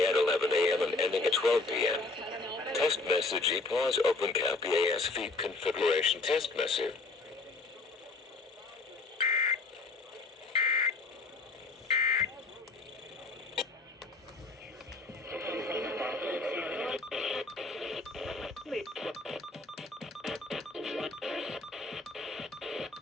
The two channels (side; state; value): right; quieter; 3.5 dB